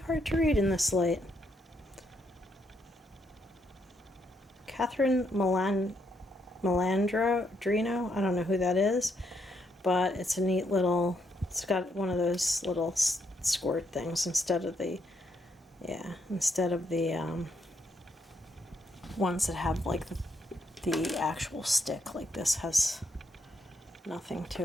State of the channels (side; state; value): both; normal; correlation 0.76